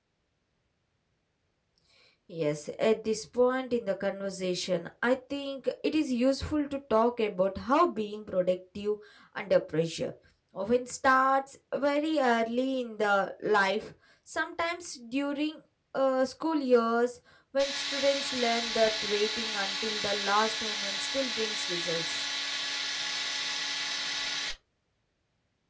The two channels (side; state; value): both; identical; correlation 1.00